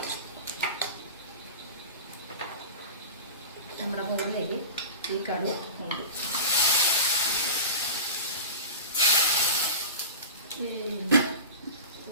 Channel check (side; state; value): both; inverted; correlation -0.30